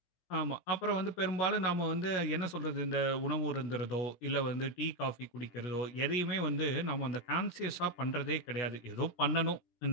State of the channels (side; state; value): right; late; 17 ms